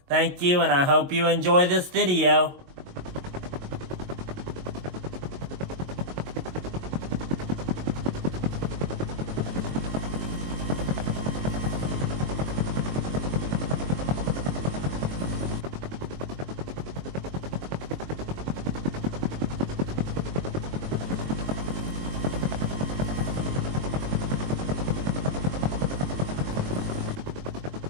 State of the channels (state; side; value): late; left; 22 ms